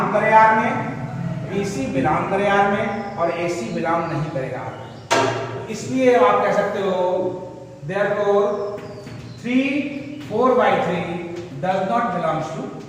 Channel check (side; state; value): both; identical; correlation 1.00